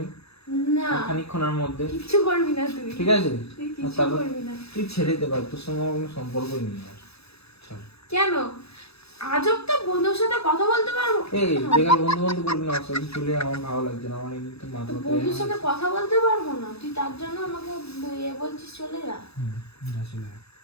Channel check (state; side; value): late; right; 0.78 ms